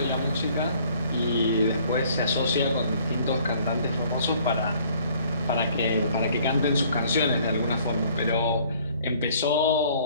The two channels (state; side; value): inverted; both; correlation -0.58